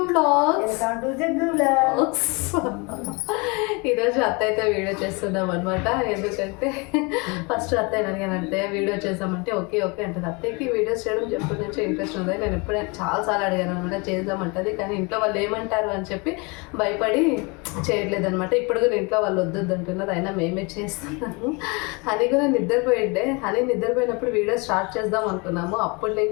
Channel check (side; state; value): right; quieter; 29.1 dB